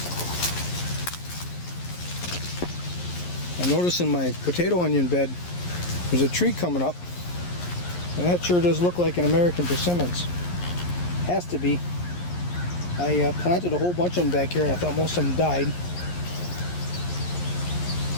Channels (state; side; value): late; right; 11 ms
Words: I noticed in my potato onion bed there's a tree coming up, and that sure does look like an American persimmons. Has to be. I planted a whole bunch of them back here, and I thought most of them died.